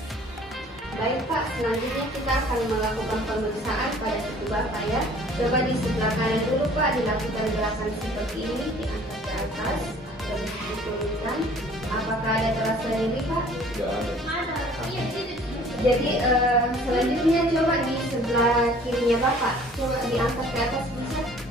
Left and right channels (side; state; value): both; normal; correlation 0.52